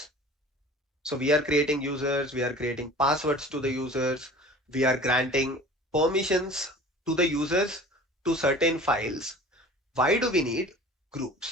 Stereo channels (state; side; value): normal; both; correlation 0.43